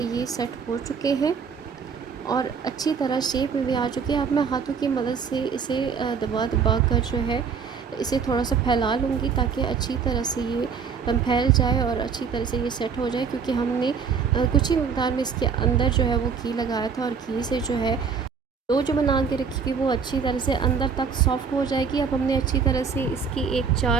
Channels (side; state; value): left; quieter; 6.1 dB